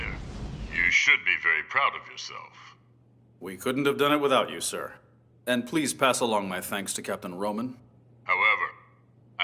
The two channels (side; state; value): both; identical; correlation 1.00